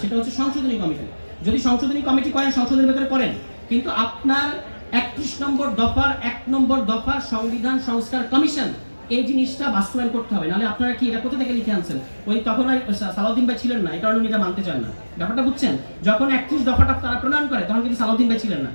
সেটা হচ্ছে সংশোধনী কমিটি। যদি সংশোধনী কমিটি করেন, সংসদের ভেতরে করেন, কিন্তু আপনার 31 নম্বর দফার 1 নম্বর দফা সংবিধান সংস্কার কমিশন, এই জিনিসটা বাস্তবায়ন করতে হবে। নাহলে আপনারা কি এটা কোথা থেকে লিখে আনছেন? ওই তখন আর সালাউদ্দিন ভাই ছিলেন না, এই কারণে উনি এটা মানতে চান না। ব্যাপারটা বুঝছেন? যখন 31 দফাটা তারা প্রণয়ন করে তখন কিন্তু সালাউদ্দিন ভাই ছিলেন না।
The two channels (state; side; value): inverted; both; correlation -1.00